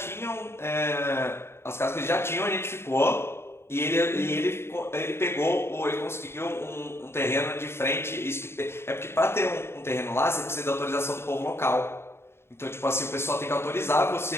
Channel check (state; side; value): late; right; 0.12 ms